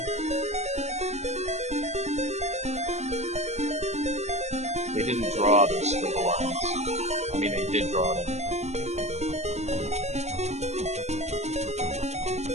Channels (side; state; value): left; late; 0.32 ms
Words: They didn't draw those squiggly lines. I mean, they did draw them.